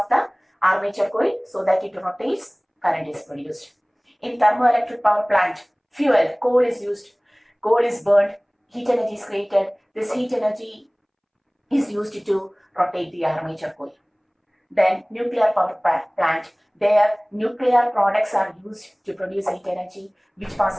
the armature coil so that it rotates. Current is produced. In thermoelectric power plant, fuel, coal is used. Coal is burned. Heat energy is created. This heat energy is used to rotate the armature coil. Then nuclear power plant, their nuclear products are used to produce heat energy which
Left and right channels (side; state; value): both; identical; correlation 1.00